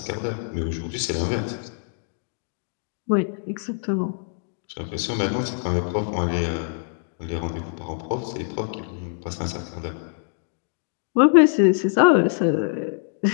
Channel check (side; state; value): right; silent; digital silence